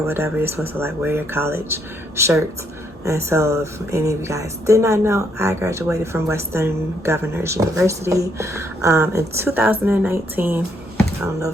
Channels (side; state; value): both; normal; correlation 0.72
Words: whatever. You're supposed to like wear your college shirts. And so if any of you guys did not know, I graduated from Western Governors University in 2019. I don't know